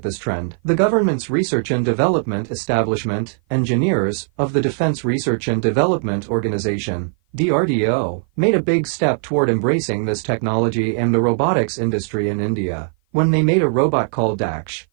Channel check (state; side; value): silent; left; 55 dB below the other